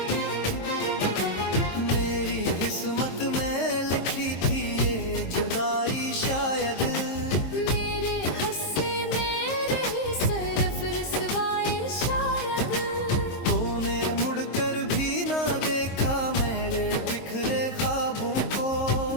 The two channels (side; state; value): right; late; 22 ms